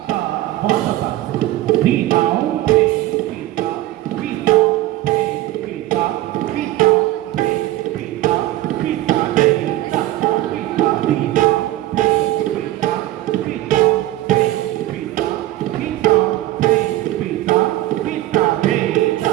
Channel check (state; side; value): quieter; left; 15.7 dB